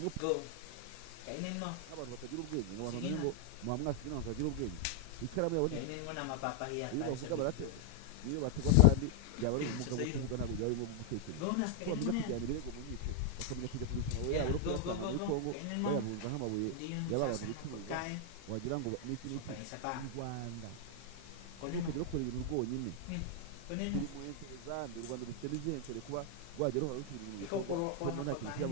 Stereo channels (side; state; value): both; different; correlation 0.00